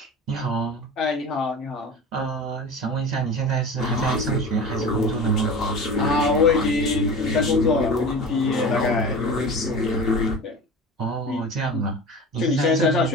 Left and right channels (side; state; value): both; normal; correlation 0.34